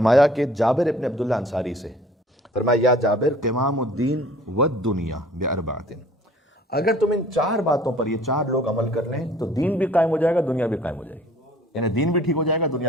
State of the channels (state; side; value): normal; both; correlation 0.52